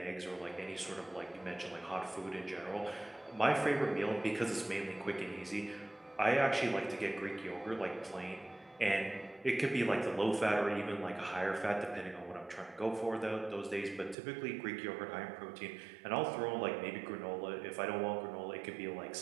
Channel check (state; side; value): drops out; left; at 14.2 s